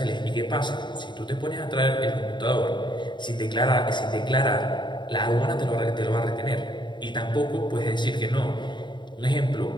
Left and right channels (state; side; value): late; right; 0.22 ms